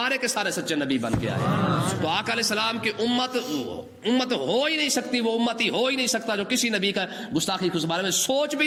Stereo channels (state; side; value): identical; both; correlation 1.00